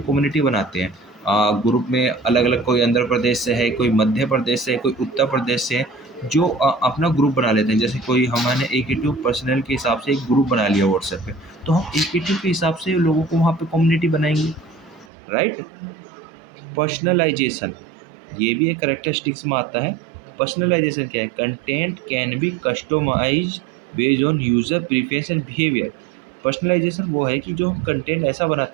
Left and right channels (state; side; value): drops out; left; at 15.1 s